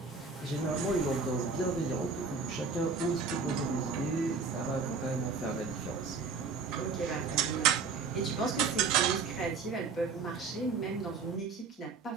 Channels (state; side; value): quieter; left; 4.8 dB